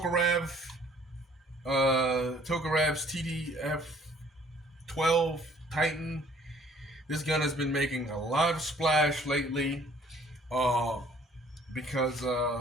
TDF-12 Titan. This gun has been making a lot of splash lately because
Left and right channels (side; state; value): both; normal; correlation 0.58